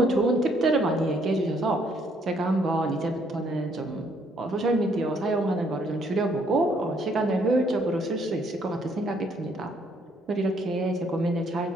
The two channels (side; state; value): both; normal; correlation 0.68